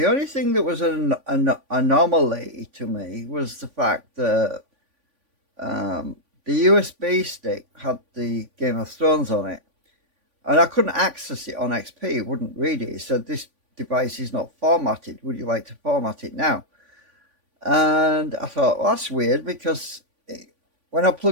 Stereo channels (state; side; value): late; left; 3.5 ms